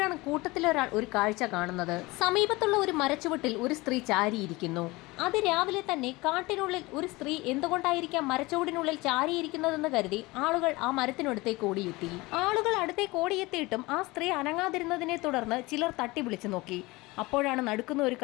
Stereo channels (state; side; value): quieter; right; 22.0 dB